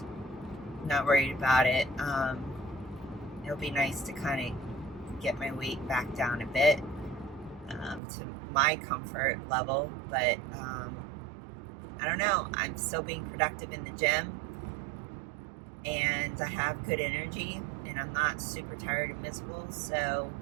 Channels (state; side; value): drops out; left; at 8.0 s